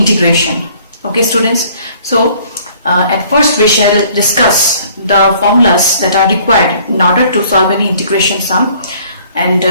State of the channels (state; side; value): inverted; both; correlation -0.57